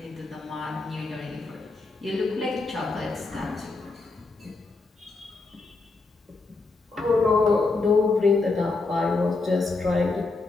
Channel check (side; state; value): right; quieter; 3.7 dB